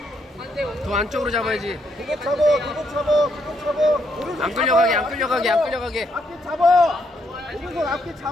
더 안쪽으로 잡아야지. 그거 잡아. 오른손 안 잡아. 끌려가게. 앞뒤 잡아. 오른손 앞뒤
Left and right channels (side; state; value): both; normal; correlation 0.75